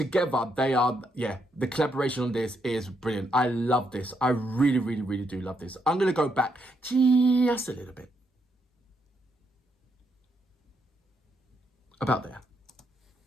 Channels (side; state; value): both; normal; correlation 0.78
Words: they are. Yeah, the collaboration on this is brilliant. I love this. I really, really, really do love this. I'm gonna go back just a little bit. About there.